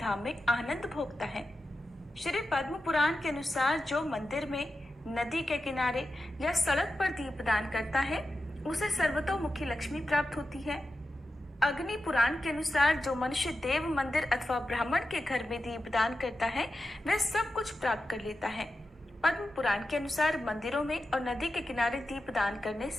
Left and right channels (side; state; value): both; normal; correlation 0.91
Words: में आनंद भोगता है। श्री पद्म पुराण के अनुसार जो मंदिर में, नदी के किनारे या सड़क पर दीपदान करता है, उसे सर्वतोमुखी लक्ष्मी प्राप्त होती है। अग्नि पुराण के अनुसार जो मनुष्य देव मंदिर अथवा ब्राह्मण के घर में दीपदान करता है, वह सब कुछ प्राप्त कर लेता है। पद्म पुराण के अनुसार मंदिरों में और नदी के किनारे दीपदान करने